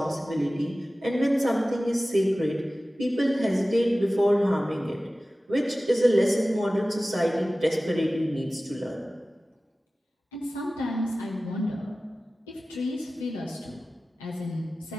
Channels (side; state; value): both; normal; correlation 0.96